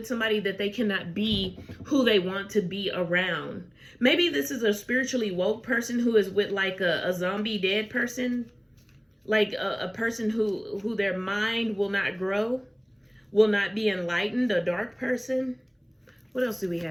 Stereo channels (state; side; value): identical; both; correlation 1.00